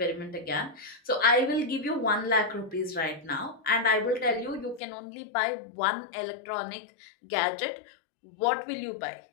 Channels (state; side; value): drops out; right; at 4.8 s